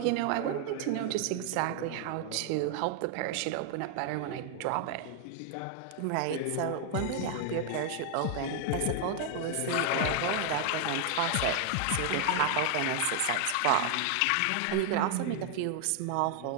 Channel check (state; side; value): different; both; correlation 0.00